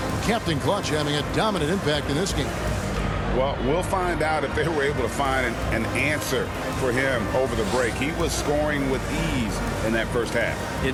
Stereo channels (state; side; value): identical; both; correlation 1.00